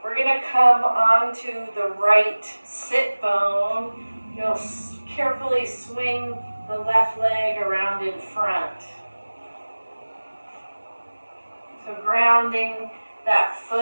We're going to come onto the right sit bone. You'll carefully swing the left leg around in front. So grounding that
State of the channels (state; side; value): inverted; both; correlation -1.00